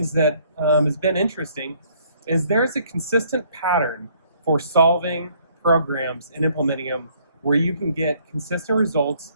that has been interesting is there's a consistent pattern for solving programs and implementing them where you can get consistent results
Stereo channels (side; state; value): both; inverted; correlation -0.63